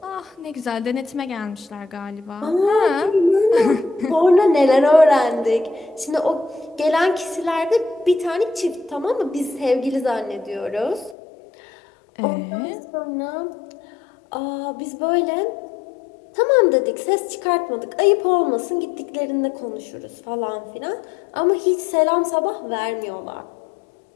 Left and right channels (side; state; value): right; drops out; at 11.2 s